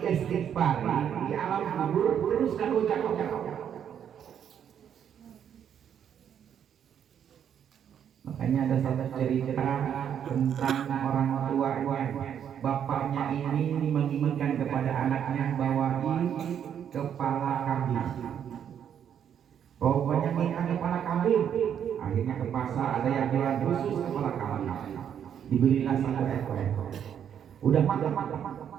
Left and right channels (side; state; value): left; quieter; 8.8 dB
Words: diistighfar di alam kubur terus kan ucap-ucap. Makanya ada satu cerita tentang orang tuanya, bapaknya ini menginginkan kepada anaknya bawain kepala kambing. Pokoknya minta kepala kambing. Akhirnya ke pasar ada yang jual khusus kepala kambing. Dibelilah satu ekor. Udah matang